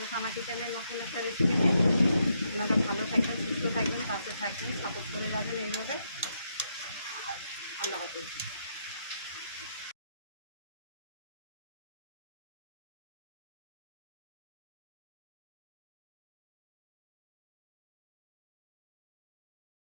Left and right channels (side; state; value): both; inverted; correlation -0.79